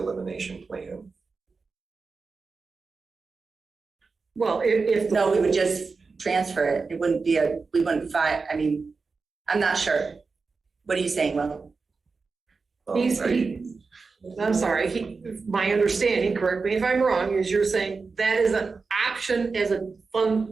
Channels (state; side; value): quieter; left; 4.5 dB